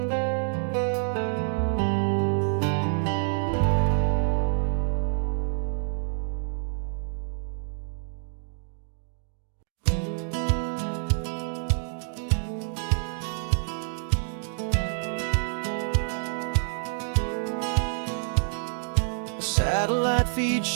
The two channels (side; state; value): left; silent; 60 dB below the other